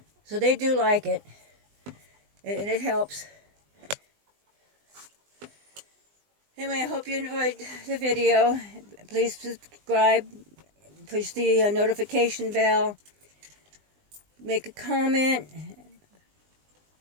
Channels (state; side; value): late; left; 20 ms